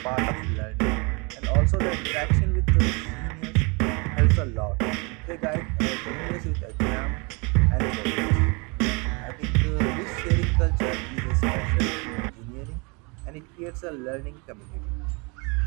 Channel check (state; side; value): quieter; left; 30.1 dB